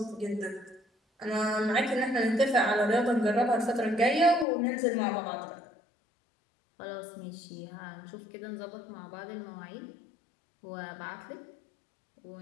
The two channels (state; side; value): drops out; right; at 4.5 s